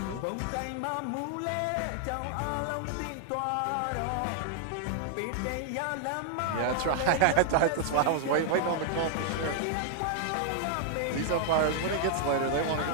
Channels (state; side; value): different; both; correlation 0.00